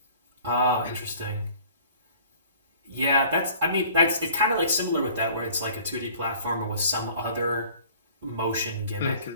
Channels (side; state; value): both; inverted; correlation -0.50